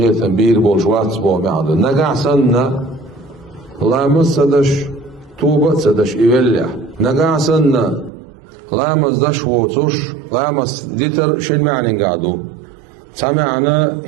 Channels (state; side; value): drops out; left; at 8.1 s